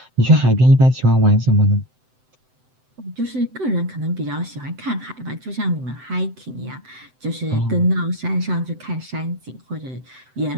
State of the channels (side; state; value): left; late; 7.8 ms